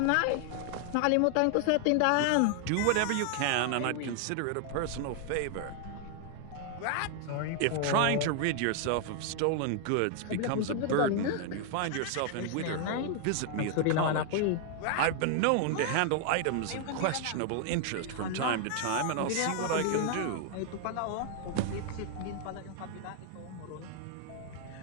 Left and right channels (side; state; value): both; different; correlation 0.00